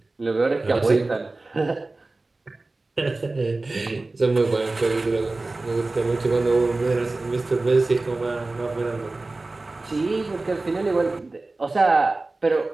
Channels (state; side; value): quieter; left; 3.2 dB